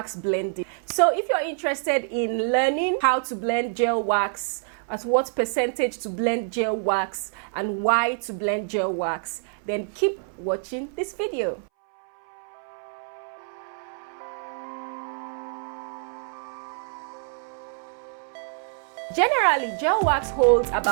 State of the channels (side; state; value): left; silent; 61 dB below the other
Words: blending. So if you're interested in learning how to blend gel wax, at what percentage to blend gel wax, and why to blend gel wax, then keep watching this video. Generally, gel wax holds